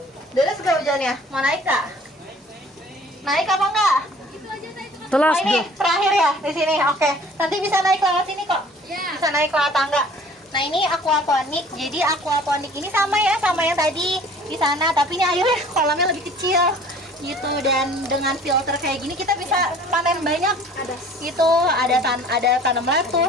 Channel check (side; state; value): both; normal; correlation 0.50